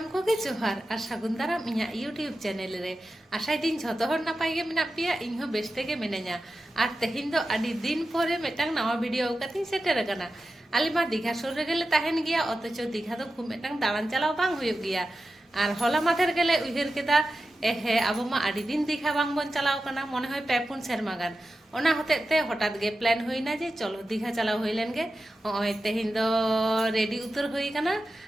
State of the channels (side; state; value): both; normal; correlation 0.92